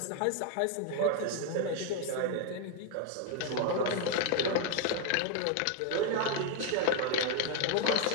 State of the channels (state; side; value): different; both; correlation 0.01